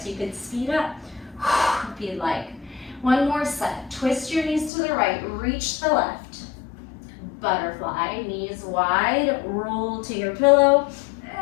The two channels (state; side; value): drops out; right; at 4.7 s